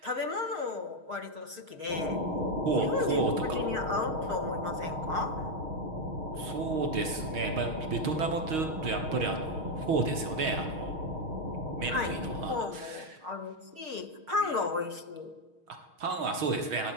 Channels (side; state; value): left; late; 6.4 ms